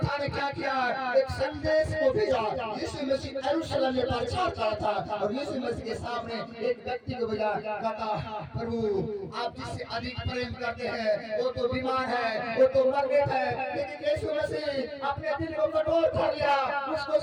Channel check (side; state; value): both; identical; correlation 1.00